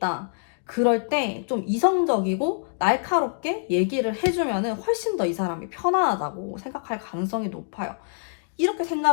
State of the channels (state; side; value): silent; right; digital silence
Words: 그럴 때 좀 이성적이고 날카롭게 얘기를 해주면은 훨씬 더 이 사람이 편안하다고 생각할 가능성이 높아요. 이렇게